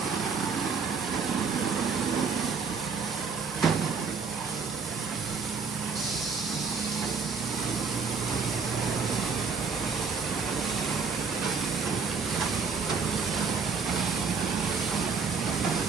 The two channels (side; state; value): left; quieter; 5.4 dB